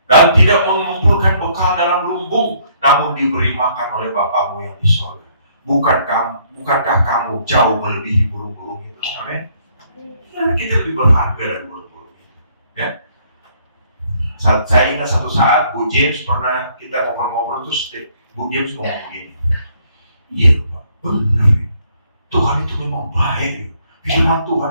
dan tidak mengumpulkan bekal dalam lumbung, namun diberi makan oleh Bapamu yang di sorga. Bukankah kamu jauh melebihi burung-burung itu? Amin. Ya, kita lebih berharga dari burung-burung itu. Ya. Saya ingat satu saat Bu James pernah kita ngobrol-ngobrol terus Bu James ngomong begini. Iya Pak, benar ya. Tuhan itu memang baik. Firman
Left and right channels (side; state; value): both; inverted; correlation -0.65